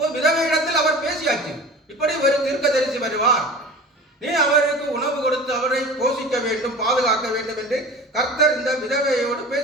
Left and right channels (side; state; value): both; normal; correlation 0.38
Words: விதவையிடத்தில் அவர் பேசியாச்சு, இப்படி ஒரு தீர்க்கதரிசி வருவார், நீ அவருக்கு உணவு கொடுத்து அவரை போஷிக்க வேண்டும், பாதுகாக்க வேண்டும் என்று கர்த்தர் இந்த விதவையோடு